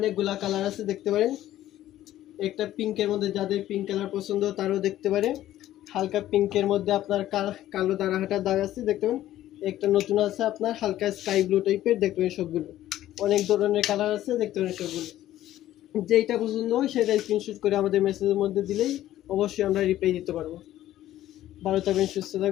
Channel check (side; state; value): right; quieter; 13.5 dB